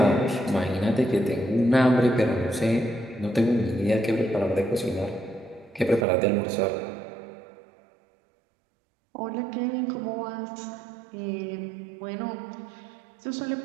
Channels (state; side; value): drops out; left; at 6.1 s